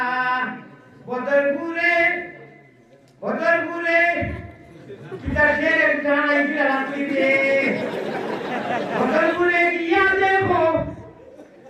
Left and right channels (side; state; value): both; identical; correlation 1.00